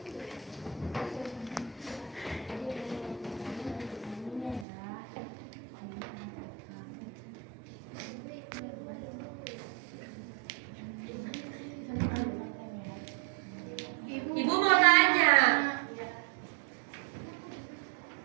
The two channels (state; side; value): drops out; left; at 4.7 s